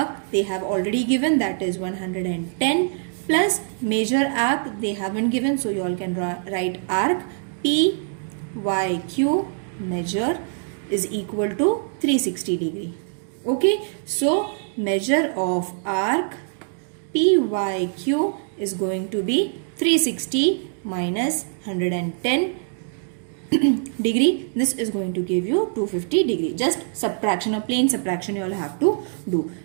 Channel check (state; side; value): silent; left; 63 dB below the other